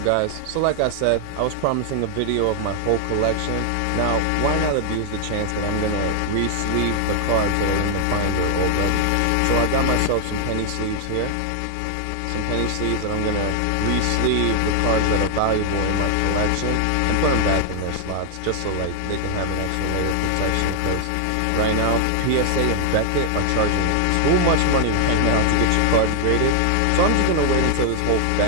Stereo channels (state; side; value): different; both; correlation 0.00